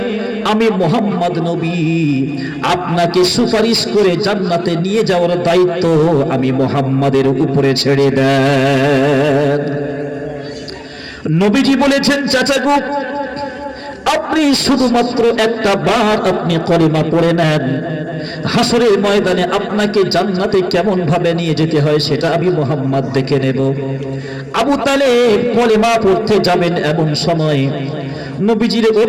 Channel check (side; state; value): both; identical; correlation 1.00